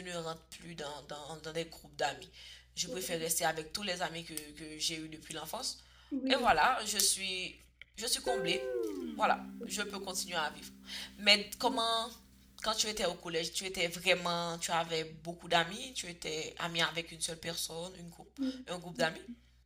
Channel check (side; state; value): both; identical; correlation 1.00